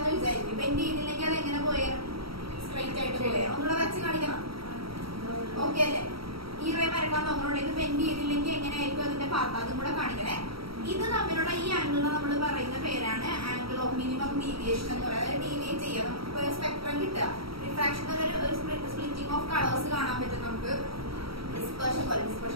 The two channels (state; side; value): late; left; 0.75 ms